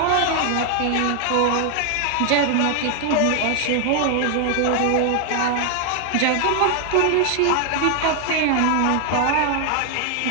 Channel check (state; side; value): different; both; correlation 0.00